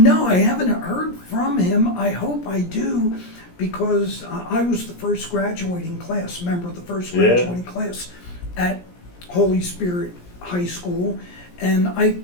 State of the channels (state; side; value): late; right; 17 ms